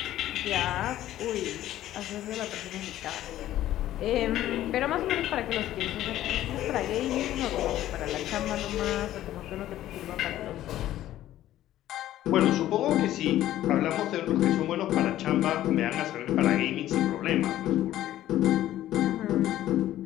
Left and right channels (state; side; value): quieter; right; 13.5 dB